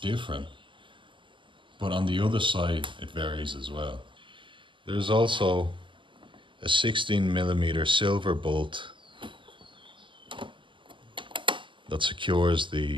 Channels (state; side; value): late; left; 0.24 ms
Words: but on the other side it varies as well. There's also a 16mm silver bolt that secures